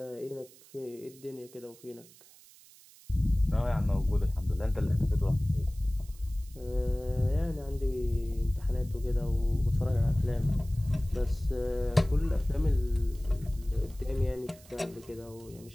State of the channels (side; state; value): right; noise; hiss, 23 dB below the sound